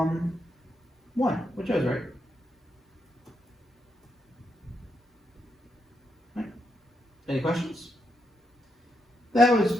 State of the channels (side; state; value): both; normal; correlation 0.81